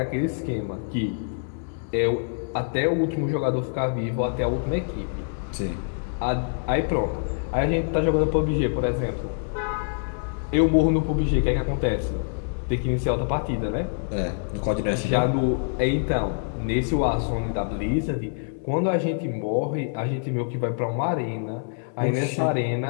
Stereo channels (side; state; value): right; silent; 61 dB below the other